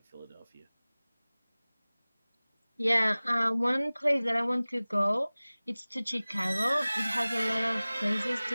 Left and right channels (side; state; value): both; inverted; correlation -0.99